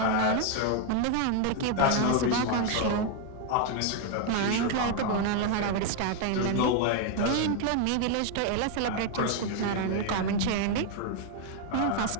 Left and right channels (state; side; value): different; both; correlation 0.01